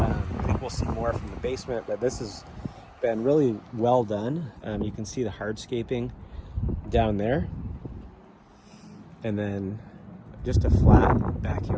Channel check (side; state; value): both; identical; correlation 1.00